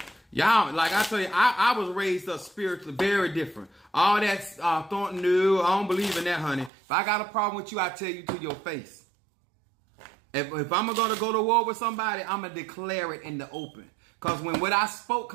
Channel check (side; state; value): left; drops out; at 6.7 s